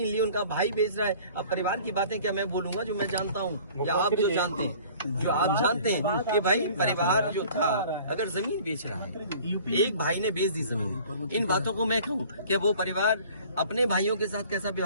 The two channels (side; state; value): both; inverted; correlation -0.49